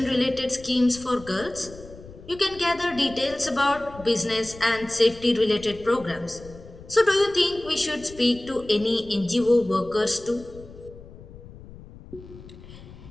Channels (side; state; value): left; noise; rumble, 18 dB below the sound